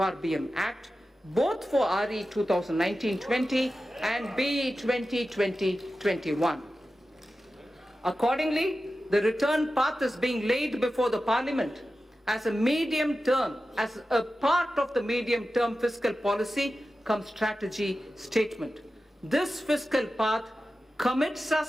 Act, both for RE 2019-20 and BE 2020-21. Accordingly, the return path is being laid before the Parliament as a part of the medium-term fiscal policy cum strategy statement. This fiscal path commits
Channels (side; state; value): both; normal; correlation 0.93